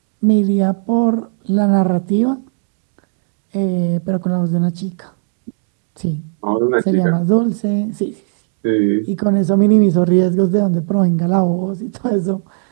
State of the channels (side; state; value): left; silent; 60 dB below the other